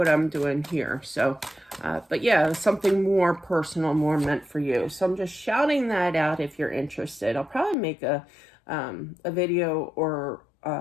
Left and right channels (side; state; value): right; drops out; at 7.8 s